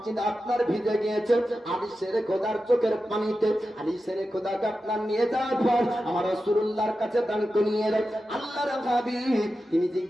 আপনার ভিজে গিয়েছে আলী সেরে খোদার চোখের পানিতে। আলী সেরে খোদাকে আপনার নিয়ে যাওয়ার পর আমার রাসূলুল্লাহর কাছে দান করিয়ে দেয়। আল্লাহর হাবিব তিনি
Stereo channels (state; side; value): normal; both; correlation 0.92